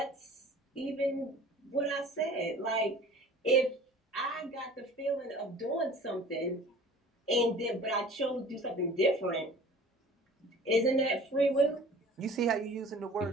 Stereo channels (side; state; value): both; normal; correlation 0.45